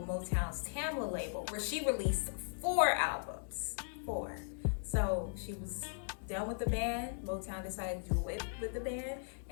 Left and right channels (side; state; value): right; silent; digital silence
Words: Motown's Tamla label, where she released 4 albums. 4. So she was done with the band. Motown decided to do it with the band,